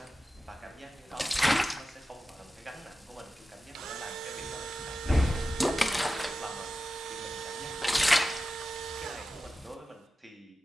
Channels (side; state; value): both; normal; correlation 0.93